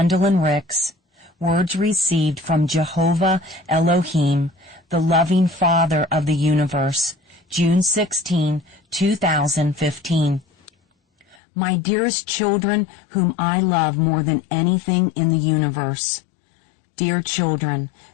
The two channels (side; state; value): right; drops out; at 11.4 s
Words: Ricks. Words received from Jehovah Elohim, the loving Father of the universe. June 16, 2015. My dearest children, whom I love more than anything in the universe. Dear children,